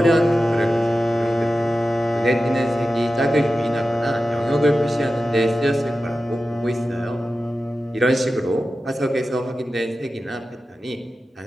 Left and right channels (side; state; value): both; normal; correlation 0.93